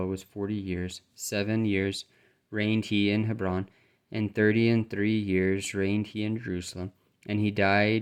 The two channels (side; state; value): both; identical; correlation 1.00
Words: was 40 years. 7 years reigned he in Hebron, and 30 and 3 years reigned he in Jerusalem. And he